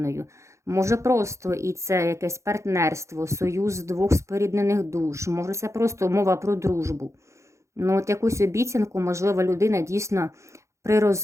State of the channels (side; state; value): left; late; 0.14 ms